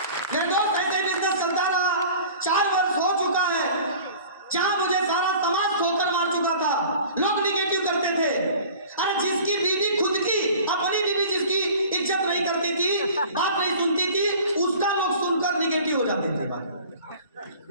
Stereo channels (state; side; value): inverted; both; correlation -0.45